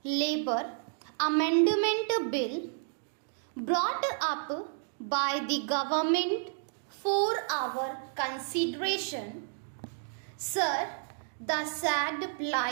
Labour Amendment Bill brought up by the government for our consideration. Sir, the sad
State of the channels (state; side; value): silent; left; digital silence